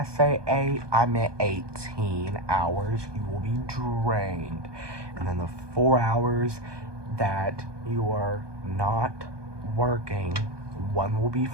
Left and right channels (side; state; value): left; late; 1.2 ms